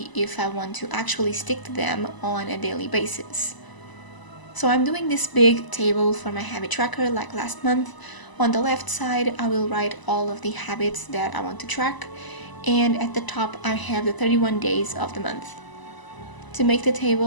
if I want to actually stick to them on a daily basis. So I'm doing this big table for my habit tracker like last month. On the left side, I will write all of the habits that I want to track, and at the top I have the 31 days of the month. To make the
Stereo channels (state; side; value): late; right; 1.0 ms